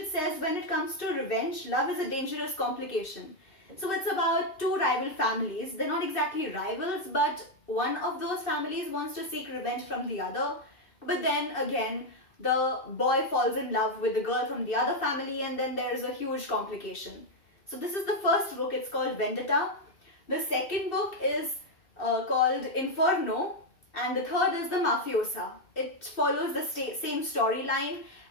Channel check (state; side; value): late; right; 2.6 ms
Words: says, when it comes to revenge, love is a dangerous complication. So it's about two rival families. They're not exactly rivals, but one of those families wants to seek revenge from the other. But then again, the boy falls in love with the girl from the other family and then there's a huge complication. So this is the first book, it's called Vendetta. The second book is called Inferno and the third is The Mafiosa. It follows the same storyline